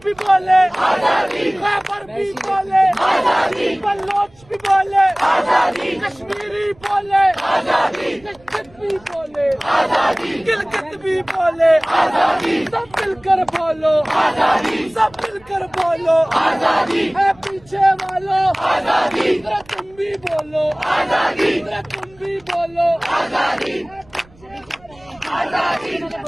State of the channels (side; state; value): right; noise; rumble, 27 dB below the sound